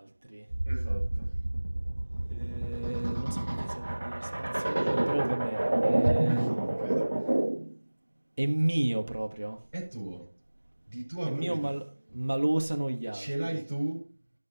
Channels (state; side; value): inverted; both; correlation -1.00